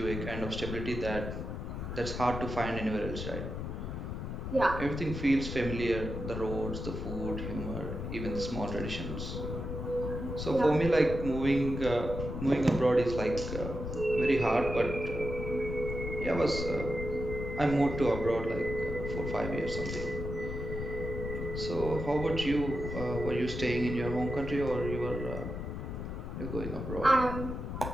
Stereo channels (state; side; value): noise; left; rumble, 5 dB below the sound